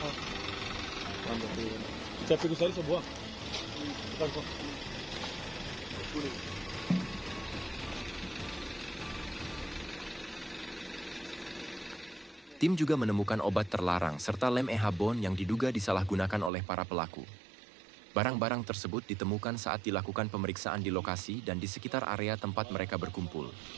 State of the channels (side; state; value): left; drops out; at 16.5 s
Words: Saya pikir saya sebuah. Bukan kok. Kuning. Tim juga menemukan obat terlarang serta lem ehabon yang diduga disalahgunakan oleh para pelaku. Barang-barang tersebut ditemukan saat dilakukan pemeriksaan di lokasi dan di sekitar area tempat mereka berkumpul.